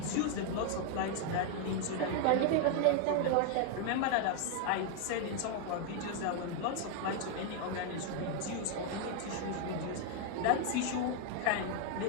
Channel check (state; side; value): different; both; correlation 0.01